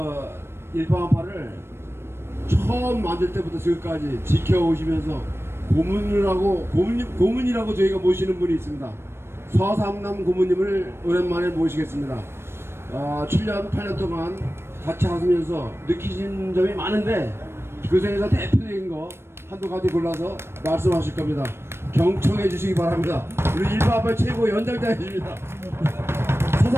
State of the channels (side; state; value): left; late; 0.12 ms